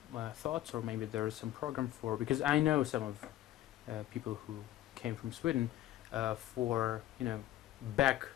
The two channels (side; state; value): right; quieter; 13.8 dB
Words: thoughts, or maybe there is some program for, because I know some of people who came from Sweden for, back